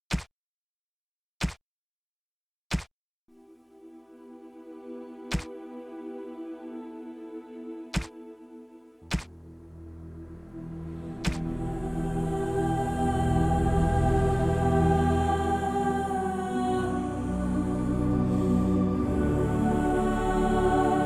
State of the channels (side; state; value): both; identical; correlation 1.00